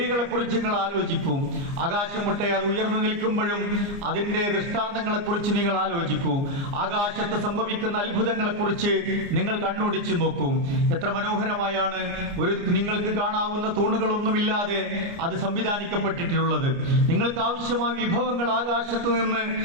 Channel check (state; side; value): late; left; 29 ms